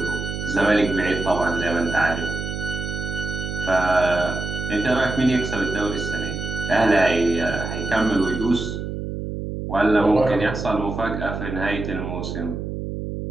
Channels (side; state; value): right; noise; hum, 5 dB below the sound